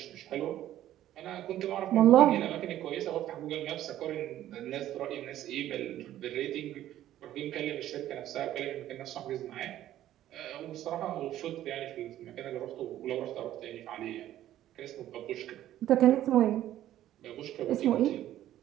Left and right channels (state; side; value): quieter; left; 12.8 dB